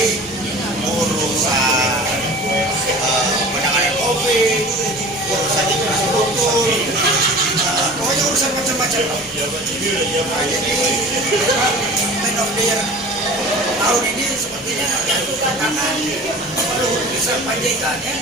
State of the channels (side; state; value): both; normal; correlation 0.40